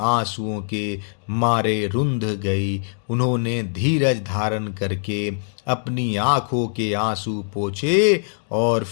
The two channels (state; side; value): silent; right; digital silence